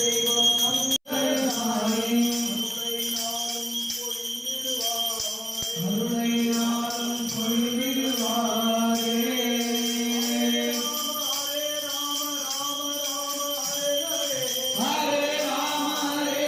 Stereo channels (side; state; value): both; identical; correlation 1.00